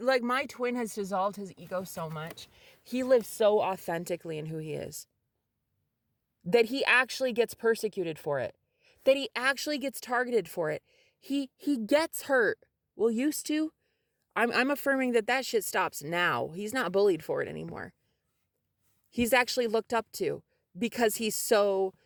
my twin has dissolved his ego so much. He lives so authentically in who he is that he actually gets persecuted for it, that he actually gets targeted for it. He gets hurt. Well, used to. I'm affirming that shit stops now. He's not bullied for it anymore. He's actually looked up to because he's so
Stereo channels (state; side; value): identical; both; correlation 1.00